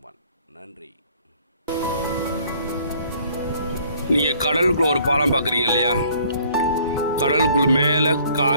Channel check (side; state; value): both; inverted; correlation -0.58